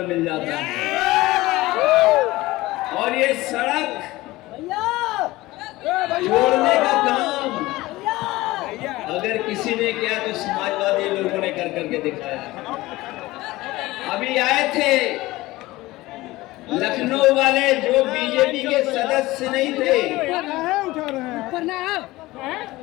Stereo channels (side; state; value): right; quieter; 18.9 dB